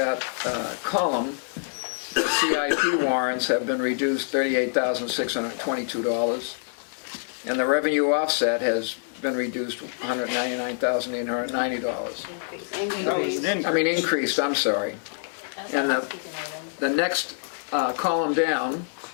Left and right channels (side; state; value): right; silent; digital silence